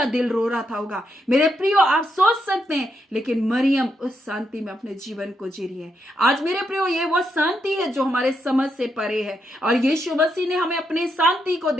दिल रो रहा था होगा। मेरे प्रियो, आप सोच सकते हैं, लेकिन मरियम उस शांति में अपने जीवन को जी रही है। आज मेरे प्रियो, ये वो शांति है जो हमारे समझ से परे है, और यीशु मसीह ने हमें अपने शांति को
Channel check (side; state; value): both; normal; correlation 0.80